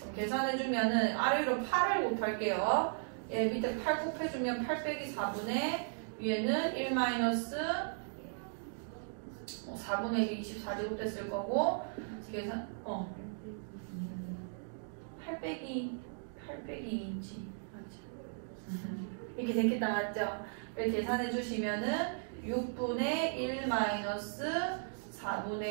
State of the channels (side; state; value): left; silent; digital silence